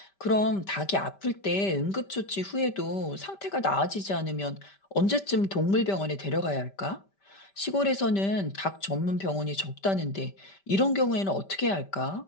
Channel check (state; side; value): late; right; 5.1 ms